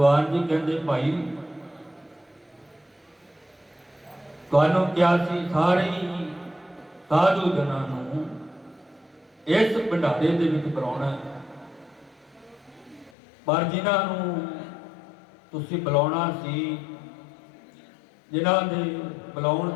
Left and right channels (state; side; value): drops out; right; at 13.1 s